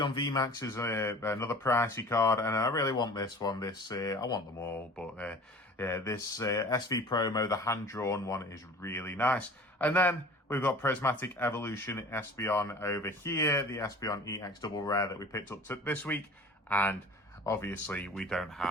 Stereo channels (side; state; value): both; normal; correlation 0.43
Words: V Max is another pricey card, and I really want this one. I want them all, but this SV Promo, the hand-drawn one, is really nice. And then we've got Prismatic Evolution Espeon over here, the Espeon EX Double Rare that we picked up this week, and obviously we don't